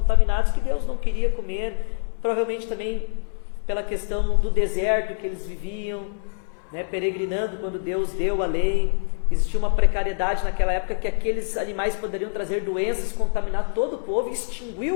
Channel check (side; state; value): right; silent; digital silence